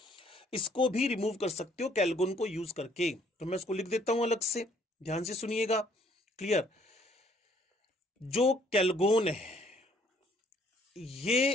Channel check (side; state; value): both; normal; correlation 0.63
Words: इसको भी रिमूव कर सकते हो कैलगोन को यूज करके। तो मैं इसको लिख देता हूं अलग से, ध्यान से सुनिएगा, क्लियर। जो कैलगोन है